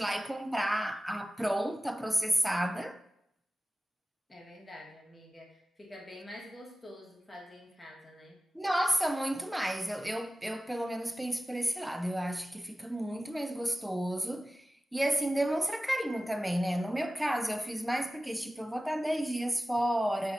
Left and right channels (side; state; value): both; normal; correlation 0.96